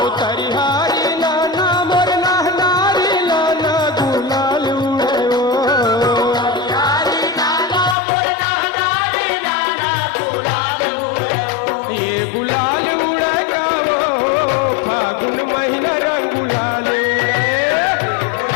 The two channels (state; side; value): drops out; right; at 8.0 s